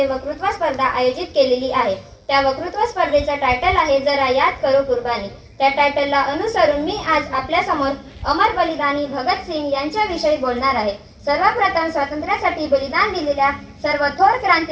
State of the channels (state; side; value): identical; both; correlation 1.00